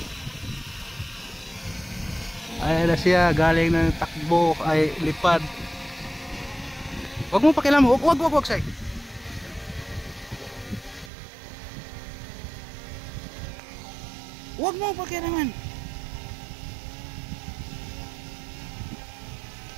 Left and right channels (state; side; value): drops out; left; at 11.1 s